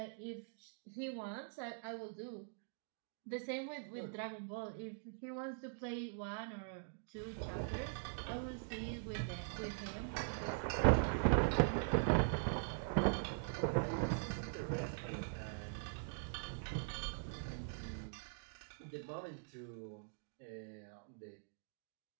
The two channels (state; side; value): silent; left; digital silence